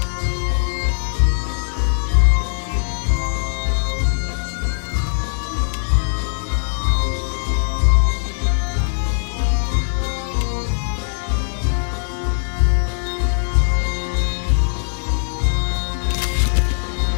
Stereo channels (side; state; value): right; silent; digital silence